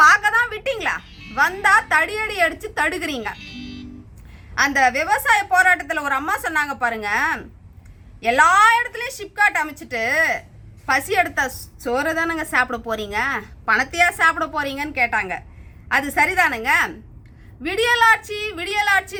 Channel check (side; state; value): both; identical; correlation 1.00